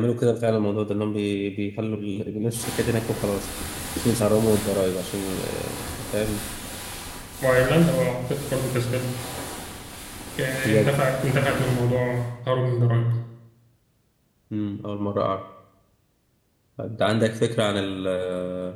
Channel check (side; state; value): both; identical; correlation 1.00